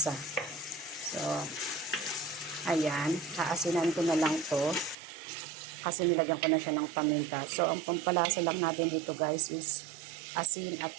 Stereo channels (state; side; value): drops out; left; at 5.0 s